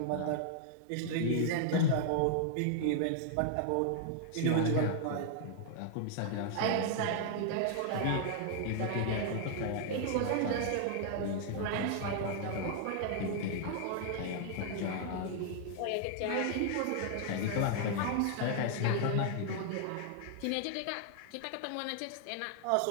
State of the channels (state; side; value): different; both; correlation 0.00